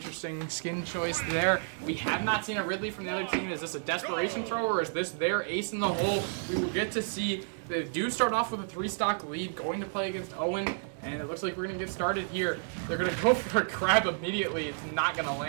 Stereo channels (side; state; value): left; silent; digital silence